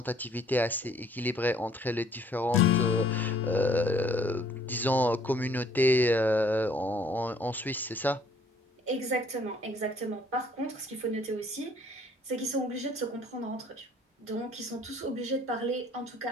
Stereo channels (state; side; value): normal; both; correlation 0.60